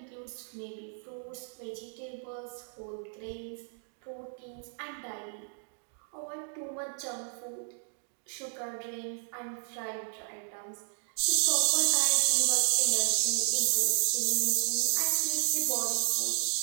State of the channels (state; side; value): silent; left; digital silence